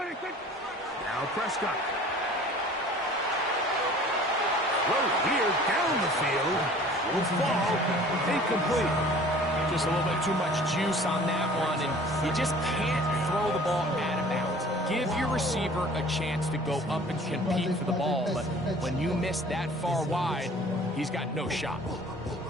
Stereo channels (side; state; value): both; normal; correlation 0.48